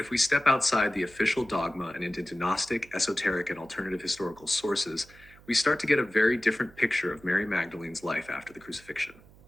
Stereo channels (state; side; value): noise; right; hum, 24 dB below the sound